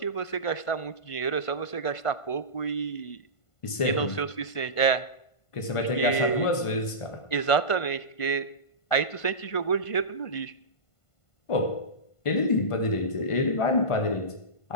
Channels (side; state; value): right; late; 1.5 ms